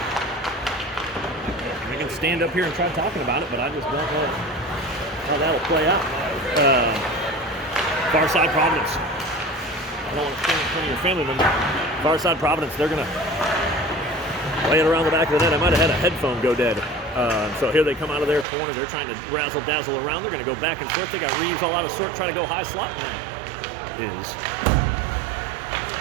Stand up here and try talking about it, but I just don't know how that'll play out. Far Side Providence. I don't want to stand in front of your family member. Far Side Providence, they're going to lay it around the back of the net. I might have had a headphone go dead. So here they come out of their corner. They're trying to razzle-dazzle around. They're going to go back and forth. They got Reeves all out of sort, trying to go high slot. And is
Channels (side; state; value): left; drops out; at 18.4 s